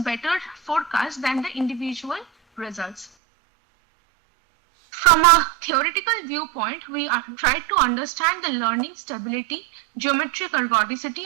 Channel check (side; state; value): left; drops out; at 3.1 s